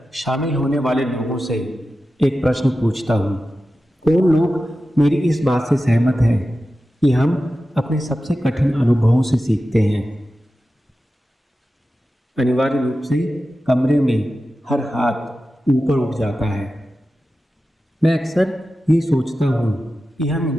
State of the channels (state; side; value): normal; both; correlation 0.93